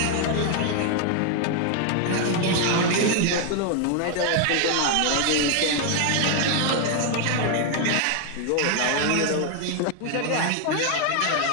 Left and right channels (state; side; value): different; both; correlation 0.00